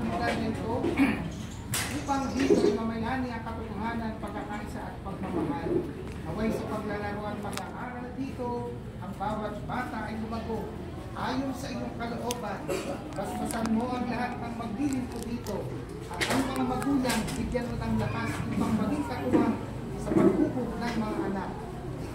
lugar nito upang dito ay mamayani ang katotohanan, pagkakaisa at pagmamahal. Naway sa paglalaro at pag-aaral dito, ang bawat bata ay lumago ayon sa iyong kalooban. Basbasan mo ang lahat ng maglilingkod dito at ang mga magulang bigyan mo ng lakas upang maging katuwang sa paghubog ng mga anak.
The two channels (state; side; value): identical; both; correlation 1.00